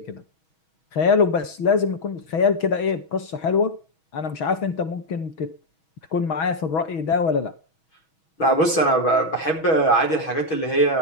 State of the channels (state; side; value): late; right; 6.3 ms